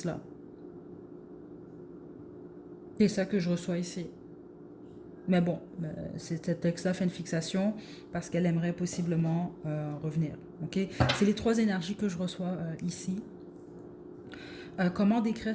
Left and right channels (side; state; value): both; identical; correlation 1.00